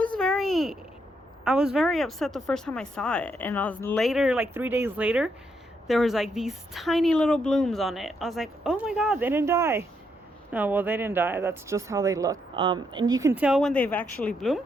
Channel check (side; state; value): both; normal; correlation 0.77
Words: very upset the first time I saw it, and I was later, like 3 days later, there was like these tiny little blooms on it. I was like, oh my god, they didn't die. No, well, they didn't die. That's just how they look. And you can tell when they've actually